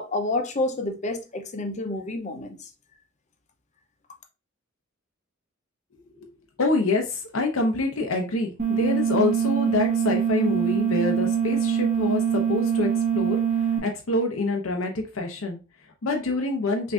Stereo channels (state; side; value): normal; both; correlation 0.32